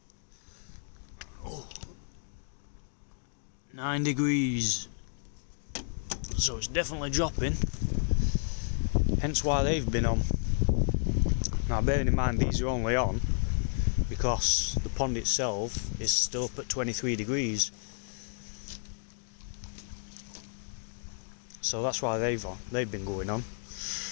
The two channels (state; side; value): silent; right; digital silence